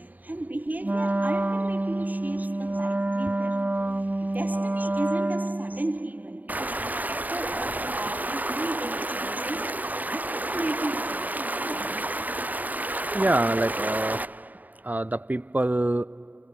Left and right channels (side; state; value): left; late; 0.081 ms